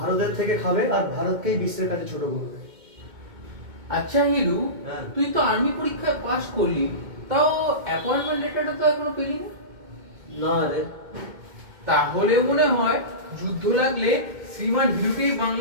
থেকে খাবে আর ভারতকেই বিশ্বের কাছে ছোট করবে। আচ্ছা হিরু, হ্যাঁ। তুই তো আর্মি পরীক্ষায় পাশ করলি, তাও অ্যাপয়েন্টমেন্ট লেটারটা তো এখনো পেলি না। না রে, তাহলে মনে হয় যুদ্ধ লাগলে শ্রীমান হিরুকেই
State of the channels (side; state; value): left; late; 2.2 ms